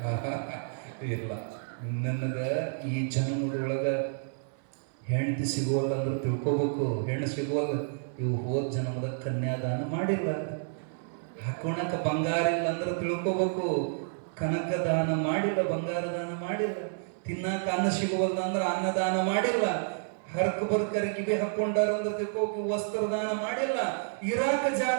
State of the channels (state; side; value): silent; left; 57 dB below the other